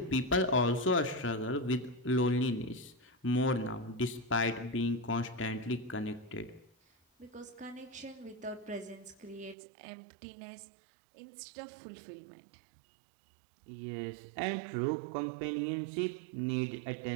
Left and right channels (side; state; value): left; drops out; at 9.6 s